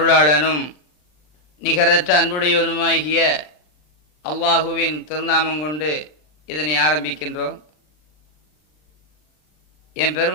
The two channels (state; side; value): late; right; 39 ms